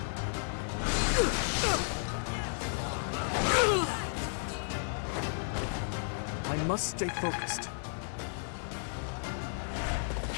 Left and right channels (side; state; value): right; silent; digital silence